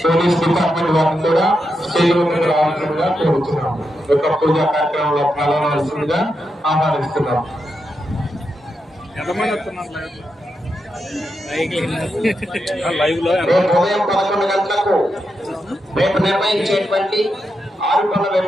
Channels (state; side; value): normal; both; correlation 0.85